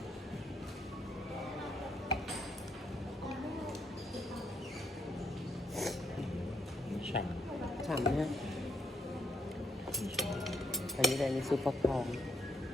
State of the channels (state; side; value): normal; both; correlation 0.73